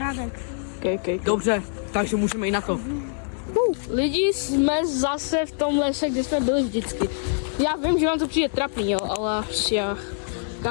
Okay. Dobře, takže můžeme jít na to. Lidi, jsme zase v tom lese, kde jsme byli vždycky. Já vím, že vám to přijde trapný, jo, ale prostě,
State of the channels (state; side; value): silent; right; 58 dB below the other